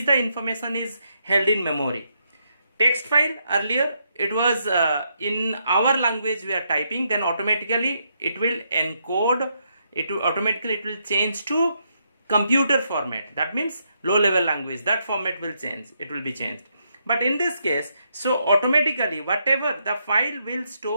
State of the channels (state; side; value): inverted; both; correlation -0.78